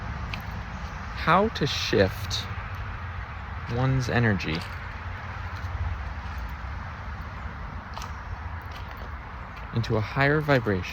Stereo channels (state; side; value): identical; both; correlation 1.00